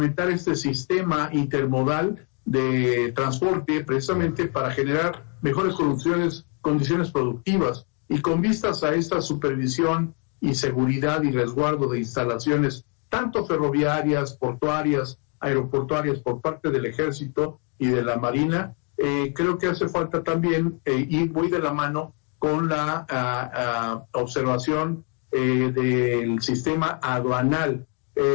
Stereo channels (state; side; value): quieter; right; 38.5 dB